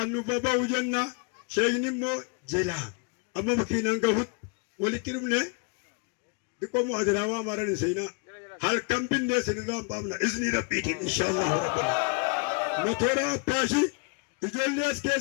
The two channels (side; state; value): right; quieter; 34.9 dB